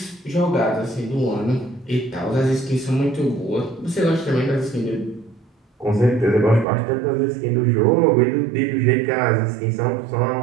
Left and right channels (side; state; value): left; drops out; at 6.7 s